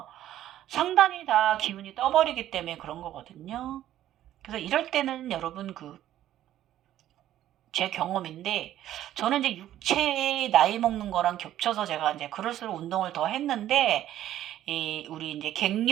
상단이 다 기운이 떠버리기 때문에 그런 거거든요. 그래서 이럴 때는 여러분 제 경험인데 저는 이제 육체의 나이 먹는 거랑 겹쳐서 제가 이제 그럴수록 운동을 더 했는데 우리 이제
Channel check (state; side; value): quieter; left; 12.5 dB